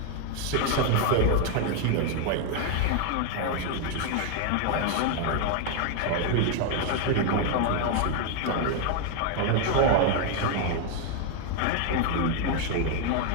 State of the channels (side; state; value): both; different; correlation 0.00